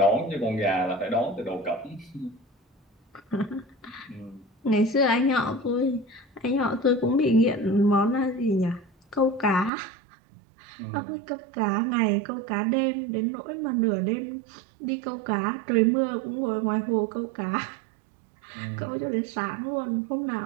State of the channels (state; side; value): drops out; left; at 9.7 s